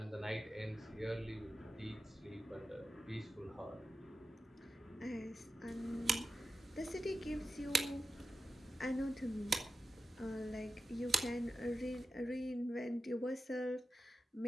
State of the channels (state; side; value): normal; both; correlation 0.91